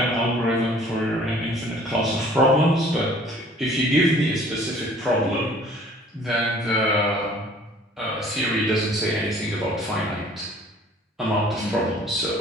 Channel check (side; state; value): both; normal; correlation 0.52